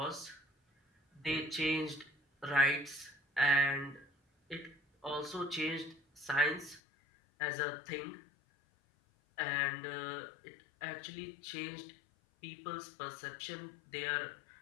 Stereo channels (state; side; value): drops out; right; at 6.8 s